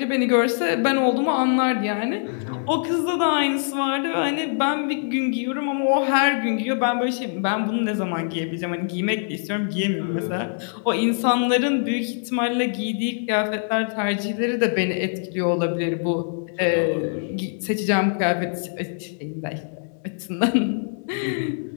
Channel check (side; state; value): right; silent; 63 dB below the other